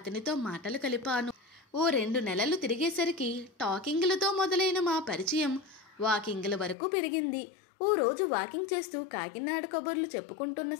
మాటలు కలిపాను. ఓ 2 నెలలు తిరిగేసరికి టాకింగ్లతో మొదలైన మా పరిచయం వాకింగ్ల వరకు పెరిగింది. ఓ రోజు వాకింగ్ చేస్తూ కాకినాడ కబుర్లు చెప్పుకుంటున్న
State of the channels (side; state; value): right; drops out; at 6.8 s